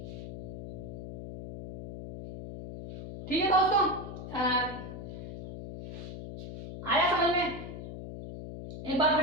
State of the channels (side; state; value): left; noise; hum, 10 dB below the sound